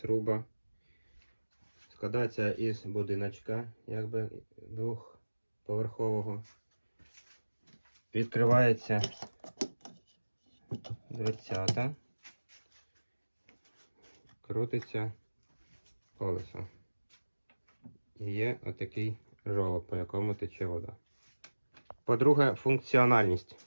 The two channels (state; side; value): inverted; both; correlation -1.00